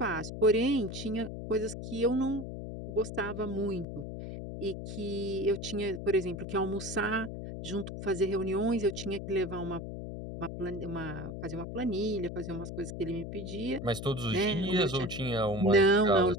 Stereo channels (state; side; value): noise; left; hum, 7 dB below the sound